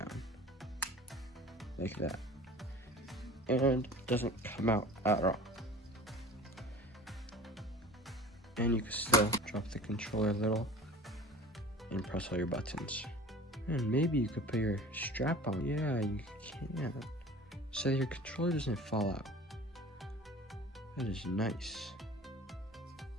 Like that. And it doesn't come out at all. And you can still drop the controller a little and press all your buttons. And maybe you could put your strap on. Yeah, you can. So your controller doesn't fall out. That is nice.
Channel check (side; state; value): both; normal; correlation 0.41